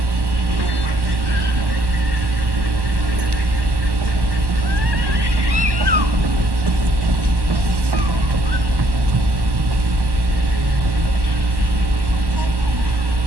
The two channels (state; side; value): late; left; 1.1 ms